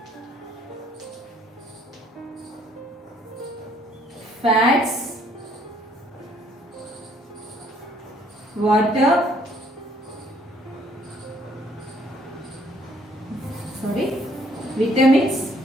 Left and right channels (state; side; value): normal; both; correlation 0.63